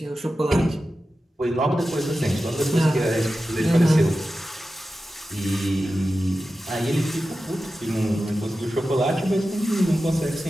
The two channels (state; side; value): normal; both; correlation 0.93